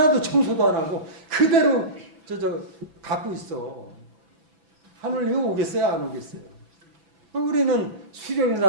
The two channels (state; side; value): late; left; 6.0 ms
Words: 청소도 안 하고 그대로 갖고 있어. 하늘님이 오겠어요? 안 오겠어요? 우리는